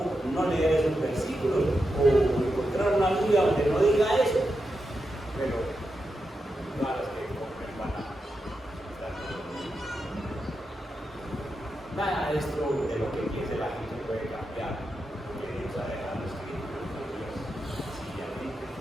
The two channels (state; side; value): normal; both; correlation 0.88